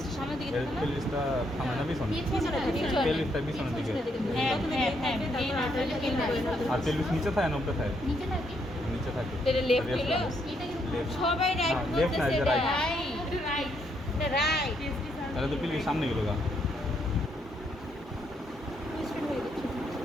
সামনের দিকে থাকে না? পেলভিসটা সামনে না পিছনে পিছনে থাকে, পেলভিসটা পিছনের দিকে হ্যাঁ হ্যাঁ হ্যাঁ এই নাটকটা কেন আর পেলভিস নিচে থাকে না উপরে থাকে নিচে থাকে নিচে থাকে এটা লেফট হলো এটা কিন্তু সবাই রাইট হ্যাঁ, left না, বলতেছে এটা এটা right. রাইট এটা রাইট তাহলে তো পেলভিস সামনে গেল গা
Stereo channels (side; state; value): both; normal; correlation 0.74